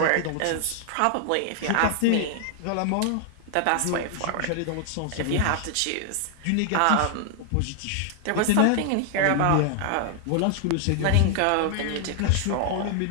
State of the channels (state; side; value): different; both; correlation 0.00